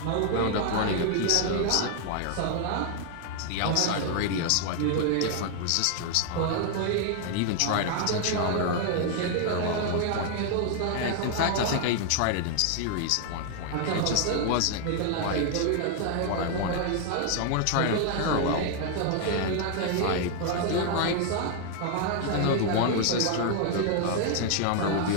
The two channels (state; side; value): different; both; correlation 0.00